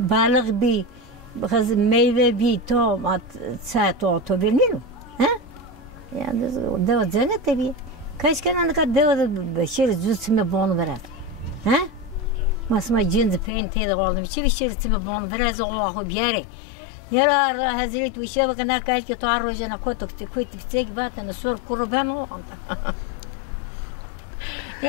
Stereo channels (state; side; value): drops out; right; at 13.5 s